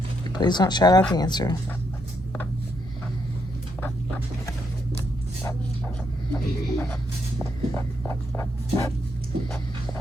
Please don't shout out the answer.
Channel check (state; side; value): normal; both; correlation 0.77